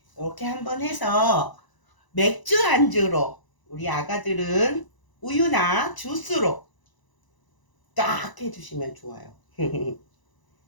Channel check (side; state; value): right; late; 1.0 ms